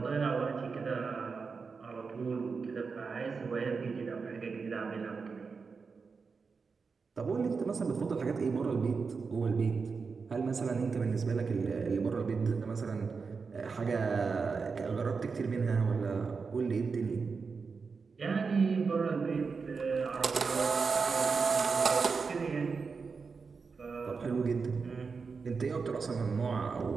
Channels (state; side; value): quieter; left; 5.0 dB